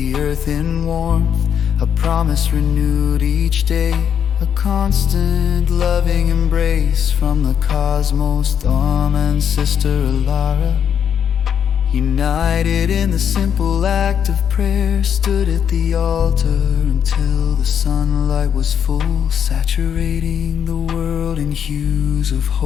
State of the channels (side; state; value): right; quieter; 8.3 dB